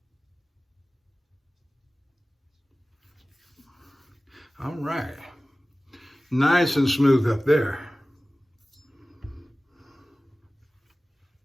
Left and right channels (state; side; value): normal; both; correlation 0.97